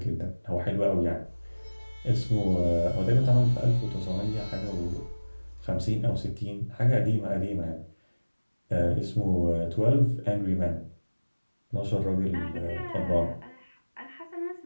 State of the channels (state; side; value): inverted; both; correlation -1.00